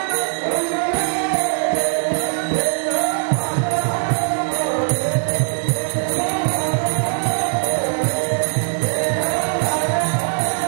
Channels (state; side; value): silent; left; digital silence